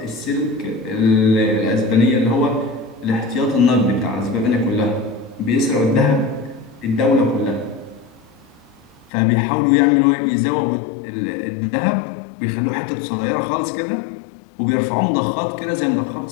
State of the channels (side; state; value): right; drops out; at 9.1 s